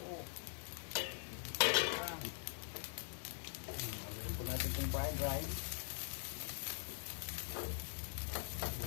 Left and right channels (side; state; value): right; silent; digital silence